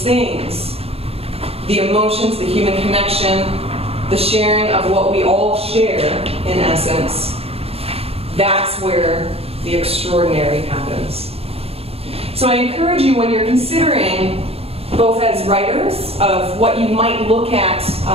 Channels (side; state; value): left; late; 0.28 ms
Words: things, the emotions, the human connection, the sharing of what we all share, in essence, that's where the extraordinary happens. So I encourage you, when you're considering, both as writers, of what you might look at